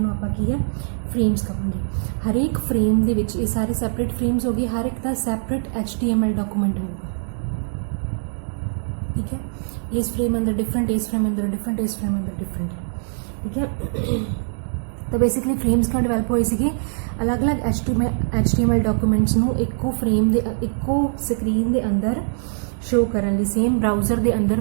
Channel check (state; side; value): silent; left; digital silence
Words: ਆਪਾਂ ਕੀ ਹੈ, ਫਰੇਮਸ ਕਹਾਂਗੇ। ਹਰੇਕ ਫਰੇਮ ਦੇ ਵਿੱਚ ਇਹ ਸਾਰੇ ਸੈਪਰੇਟ ਫਰੇਮਸ ਹੋ ਗਏ, ਹਰ ਇੱਕ ਦਾ ਸੈਪਰੇਟ HTML ਡਾਕੂਮੈਂਟ ਹੋਊਗਾ, ठीक है। इस फ्रेम अंदर डिफरेंट, इस फ्रेम अंदर डिफरेंट, इस फ्रेम अंदर डिफरेंट, ठीक है। तो बेसिकली फ्रेम्स क्यों डिवेलप होए सी, अलग अलग HTML डॉक्यूमेंट्स नू इक्को फ्रेम दे इक्को स्क्रीन दे अंदर शो करन लई, सेम ब्राउज़र दे